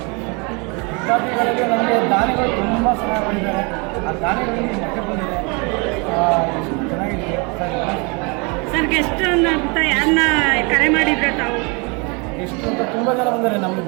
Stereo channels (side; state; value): left; quieter; 30.8 dB